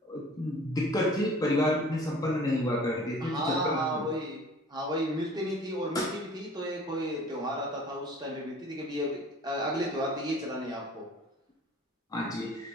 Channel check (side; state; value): both; normal; correlation 0.48